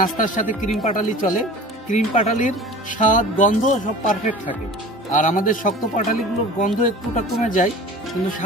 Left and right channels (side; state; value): both; normal; correlation 0.40